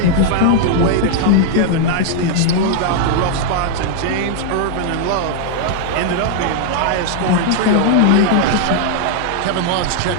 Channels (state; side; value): different; both; correlation 0.00